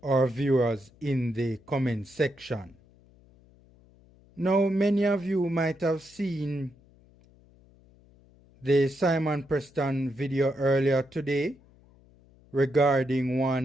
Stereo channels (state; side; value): noise; left; hum, 28 dB below the sound